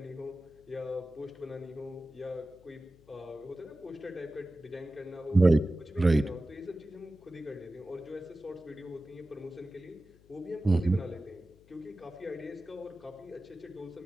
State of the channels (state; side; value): noise; left; hum, 26 dB below the sound